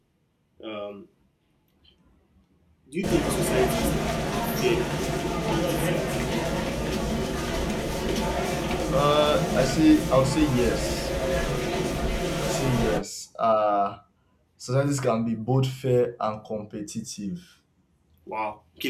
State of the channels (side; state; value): both; identical; correlation 1.00